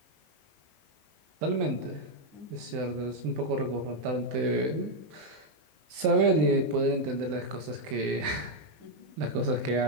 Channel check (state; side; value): late; left; 20 ms